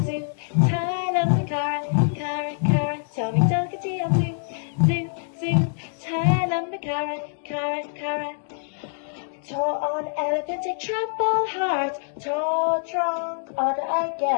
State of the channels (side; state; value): right; silent; digital silence